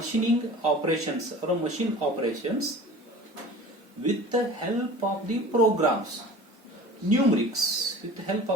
operations or machine operations with the help of the programs, numerics, with the help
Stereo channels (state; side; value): normal; both; correlation 0.41